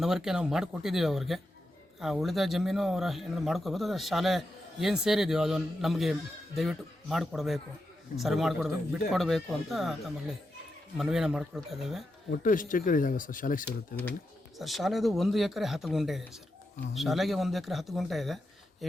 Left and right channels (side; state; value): both; normal; correlation 0.87